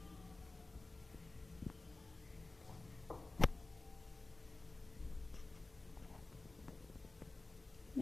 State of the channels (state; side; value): quieter; right; 3.2 dB